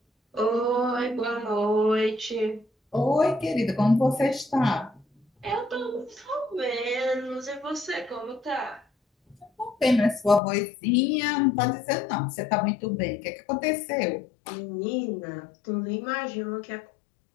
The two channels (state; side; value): drops out; right; at 10.4 s